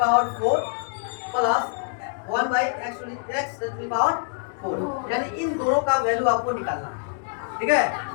4 plus 1/x to the power 4, यानी इन दोनों का वैल्यू आपको निकालना है। ठीक है,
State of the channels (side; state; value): right; silent; 62 dB below the other